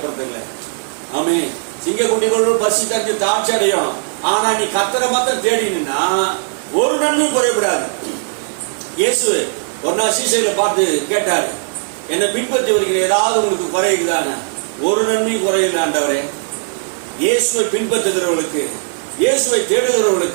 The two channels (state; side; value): silent; left; digital silence